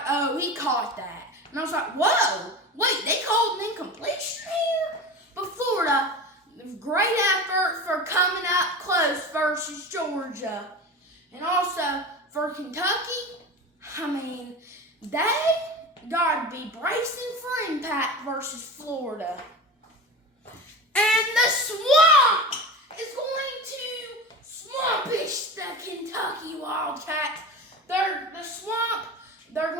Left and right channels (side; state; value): both; normal; correlation 0.30